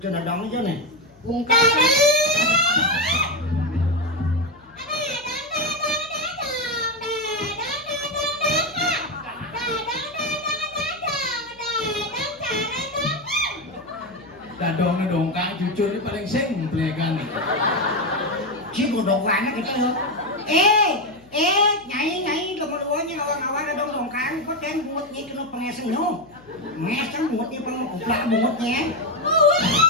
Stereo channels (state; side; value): noise; left; hum, 28 dB below the sound